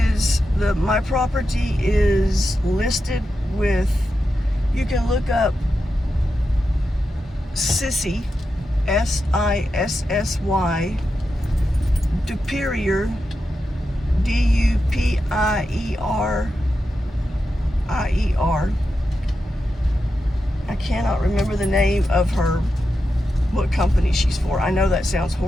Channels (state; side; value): normal; both; correlation 0.89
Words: my property is listed with, you can look up Sissy, Sissy, duPerier, duPierIer. I cannot remember the name of what company she's for. I know that sounds